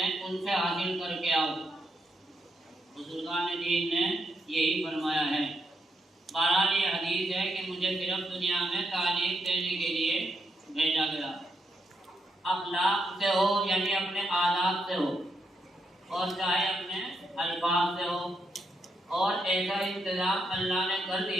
उनसे हासिल करके आओ। बुजुर्गान दीन ने यही फरमाया है। बहरहाल ये हदीस है कि मुझे सिर्फ दुनिया में तालीम देने के लिए भेजा गया। अखलाक से हो यानी अपने आदाब से हो, और चाहे अपने अल्फाज से हो, और ऐसा इंतजाम अल्लाह ने कर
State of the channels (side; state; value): both; normal; correlation 0.80